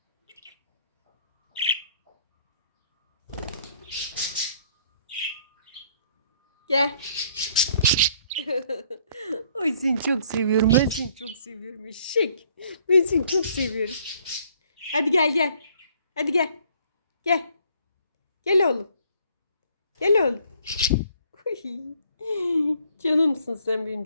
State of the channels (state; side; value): inverted; both; correlation -0.62